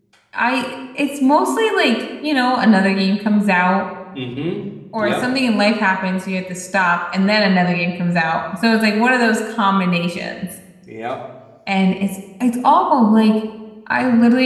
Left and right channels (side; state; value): both; identical; correlation 1.00